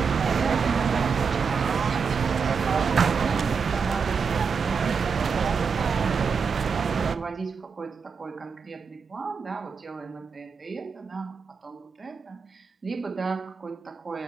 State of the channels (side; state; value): left; quieter; 5.7 dB